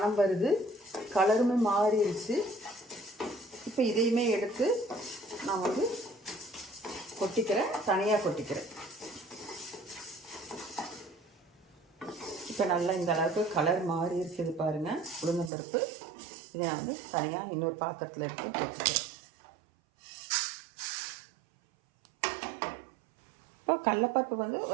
வருது, கலருமே மாறிடுச்சு. இப்போ இதையுமே எடுத்து நான் வந்து கொட்டிக்கிறேன், தனியாக கொட்டிக்கிறேன். இப்போ நல்லா இந்த அளவுக்கு கலர் மாறி இருக்குது பாருங்கள் உளுந்தம்பருப்பு. இதை நான் வந்து தனியாக இன்னொரு பாத்திரத்தில் எடுத்து கொட்டிக்கிறேன். இப்போ கடலைப்பருப்பு வந்து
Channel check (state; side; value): drops out; left; at 15.5 s